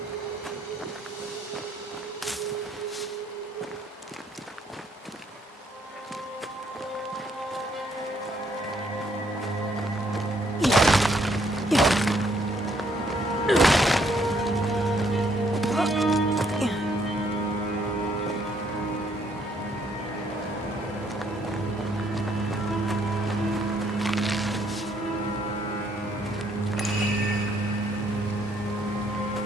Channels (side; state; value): both; normal; correlation 0.69